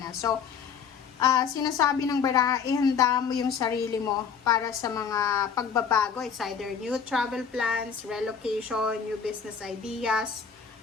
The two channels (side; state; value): right; quieter; 6.7 dB